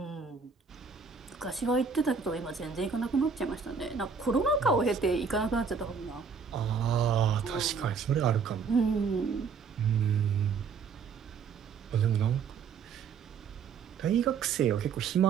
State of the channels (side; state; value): left; quieter; 5.8 dB